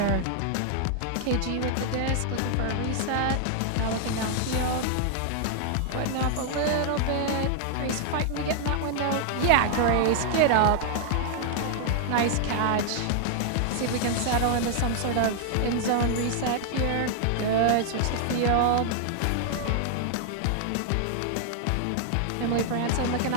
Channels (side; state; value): both; different; correlation -0.01